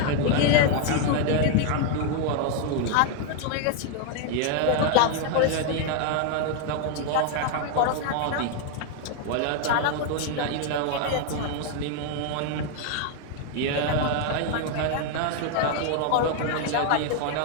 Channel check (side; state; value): both; different; correlation 0.00